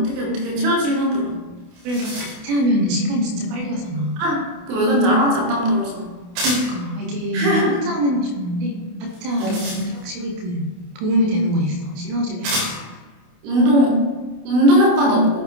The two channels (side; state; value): left; late; 28 ms